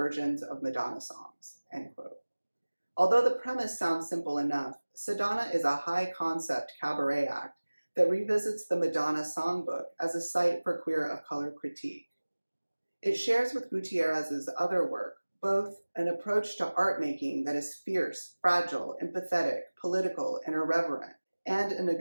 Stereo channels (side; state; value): both; inverted; correlation -1.00